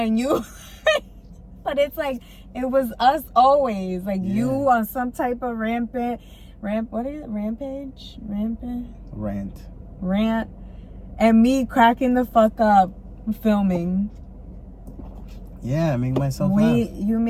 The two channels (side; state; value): both; identical; correlation 1.00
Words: and you. But it's like it was us always. Like, you on some type of rampage, rant, and me cracking the fuck up filming. Yeah, I make myself laugh. You